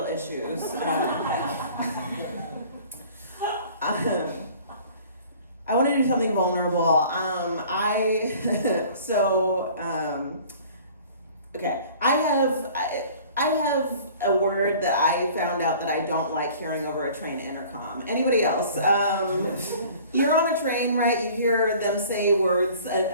issues. I want to do something vulnerable. Okay, I have a word that I found out that I don't like hearing over a train intercom. Anybody else? You're on a train, right? You hear them say words,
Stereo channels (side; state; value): both; inverted; correlation -0.49